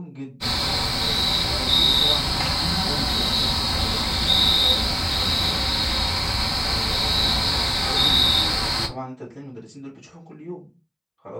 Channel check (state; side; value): identical; both; correlation 1.00